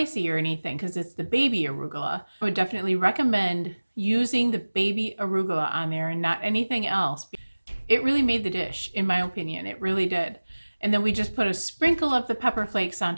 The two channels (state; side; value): inverted; both; correlation -1.00